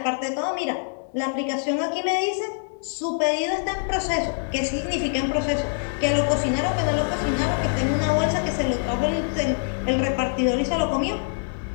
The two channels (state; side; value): silent; right; digital silence